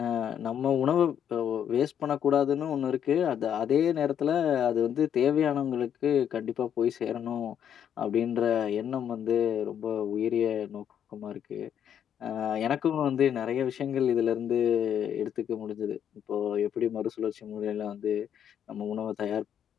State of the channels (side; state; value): right; quieter; 9.1 dB